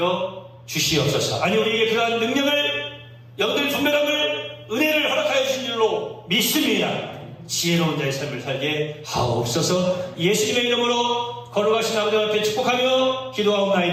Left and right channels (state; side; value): identical; both; correlation 1.00